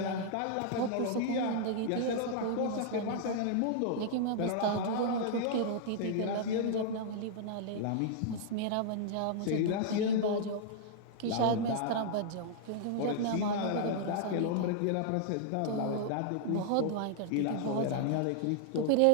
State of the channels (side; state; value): both; different; correlation -0.01